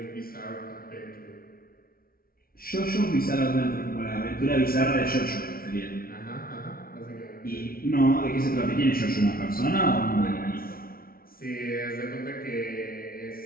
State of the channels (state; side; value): late; right; 0.43 ms